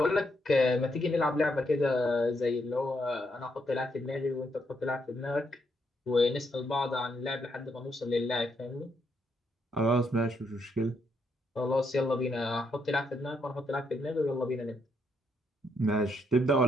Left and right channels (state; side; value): normal; both; correlation 0.77